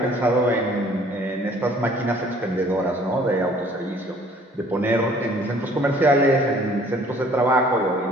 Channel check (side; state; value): both; normal; correlation 0.56